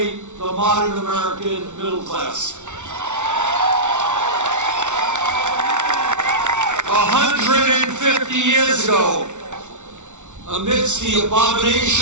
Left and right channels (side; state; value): left; late; 0.85 ms